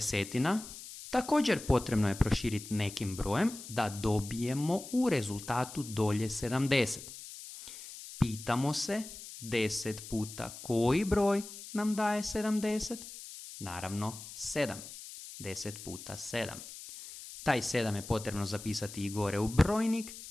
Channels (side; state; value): left; noise; hiss, 13 dB below the sound